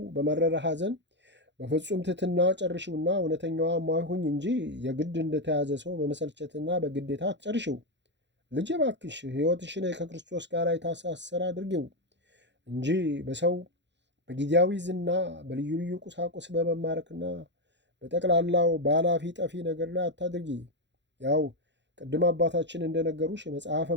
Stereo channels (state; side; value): late; left; 0.52 ms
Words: በመረረ ሐዘን በፍጹም ትሕትና ጨርሽውና እውነተኛዋ ማይሁኝ እንጂ የግድ እንደተያዘ ሰው በመሰልቸትና በግዴታ አትጨርሽው። ልጄ እባክሽ ሕይወትሽን ከክርስቶስ ጋር የታሳሰረ አድርጊው እንጂ በሰው በጊዜያዊ ዝና በልዩ ልዩ ቁሳቁስ በመማረክና በጠቅላላው በኃላፊ ጠፊ ነገር ላይ አታድርጊ። ያው ቅድም አባታችን እንደነገሩሽ መጽሐፈ